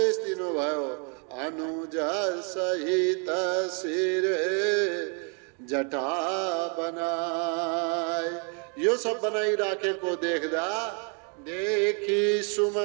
दिनुभयो। अनुज सहित शिर जटा बनाए। यो सब बनाइराखेको देख्दा देखी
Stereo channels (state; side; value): quieter; left; 38.7 dB